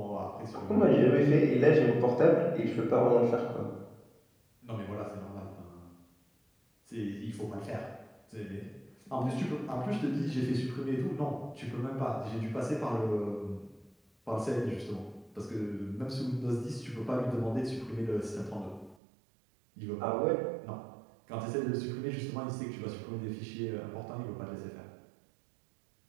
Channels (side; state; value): left; drops out; at 18.9 s